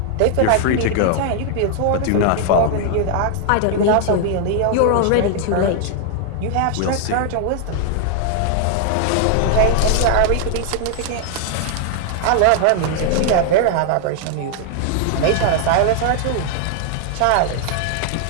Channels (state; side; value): different; both; correlation 0.00